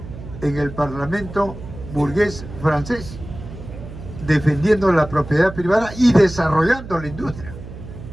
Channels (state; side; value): noise; right; hum, 13 dB below the sound